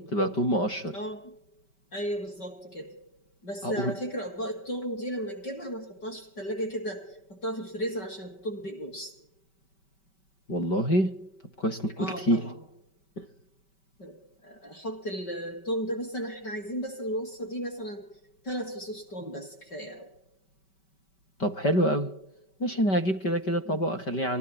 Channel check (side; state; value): right; late; 5.2 ms